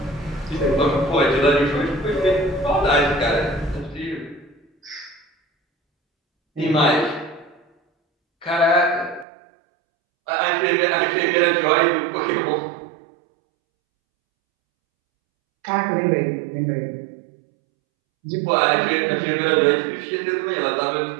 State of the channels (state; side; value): drops out; left; at 9.2 s